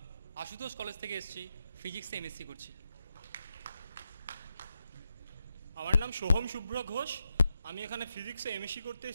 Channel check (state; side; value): inverted; both; correlation -0.86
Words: আশুতোষ কলেজ থেকে এসেছি, ফিজিক্সে এমএসসি করছি। আমার নাম সোহম শুভ্র ঘোষ, আমি এখানে ফিজিক্সে এমএসসি করতে